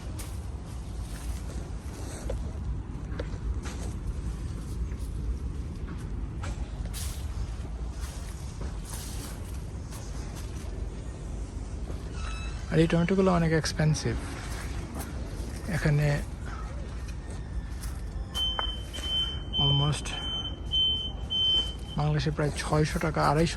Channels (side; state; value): both; identical; correlation 1.00